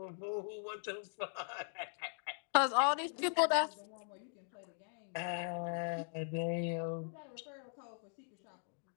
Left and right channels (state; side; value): silent; right; digital silence